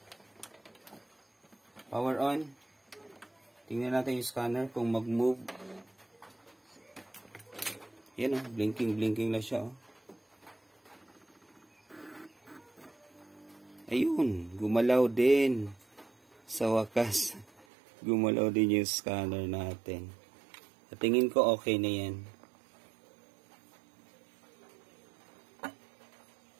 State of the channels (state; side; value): drops out; left; at 17.7 s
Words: Power on. Tingnan natin yung scanner kung mag-move. Yan o, blinking na siya. Ayun, gumalaw din. Sa wakas, gumalaw din yung scanner natin. At tingin ko okay na yan.